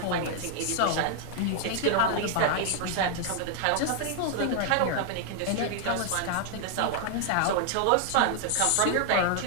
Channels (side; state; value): both; different; correlation 0.00